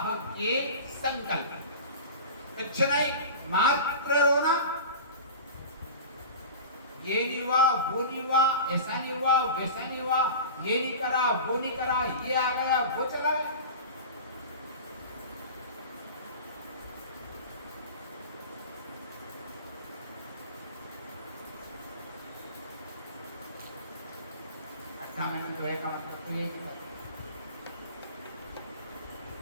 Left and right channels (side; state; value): both; inverted; correlation -0.34